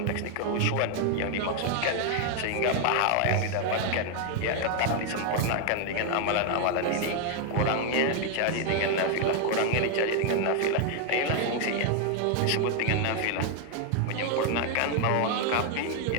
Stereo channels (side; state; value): both; different; correlation 0.00